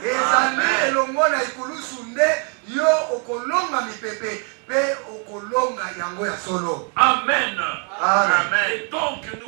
ezali elongo na ikulusu nde yo okolonga mipepe mpe okolonga yango ya solo. Amen. Amen. Et donc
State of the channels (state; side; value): quieter; left; 38.3 dB